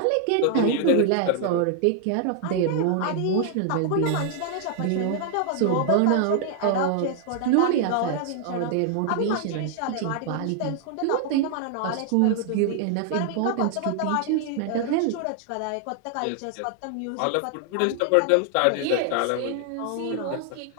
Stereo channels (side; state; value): both; different; correlation 0.00